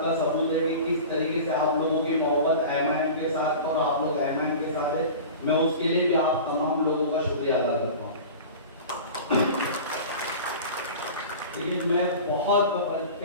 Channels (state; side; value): inverted; both; correlation -0.36